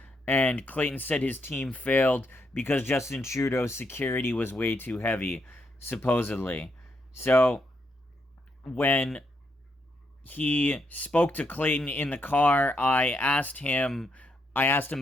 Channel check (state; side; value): normal; both; correlation 0.78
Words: And Clayton said his team failed because Justin Trudeau's security was way too heavy, supposedly. So when he spoke to Clayton in the car, I asked him